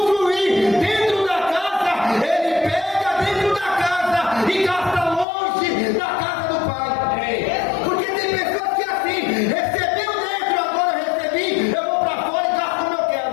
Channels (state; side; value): drops out; right; at 5.2 s